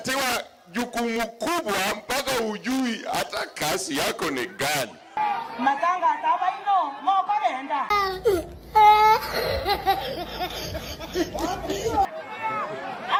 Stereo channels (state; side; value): identical; both; correlation 1.00